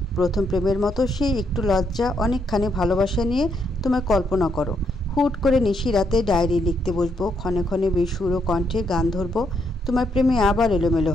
প্রথম প্রেমের মতো সেই একটু লজ্জা, অনেকখানি ভালোবাসা নিয়ে তোমায় কল্পনা করো। হুট করে নিশি রাতে ডায়েরি লিখতে বসবো, ক্ষণে ক্ষণে বেসুর ও কণ্ঠে গান ধরবো, তোমার প্রেমে আবার এলোমেলো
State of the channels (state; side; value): normal; both; correlation 0.76